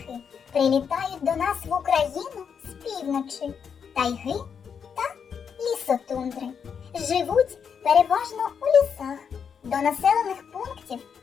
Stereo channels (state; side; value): quieter; right; 6.9 dB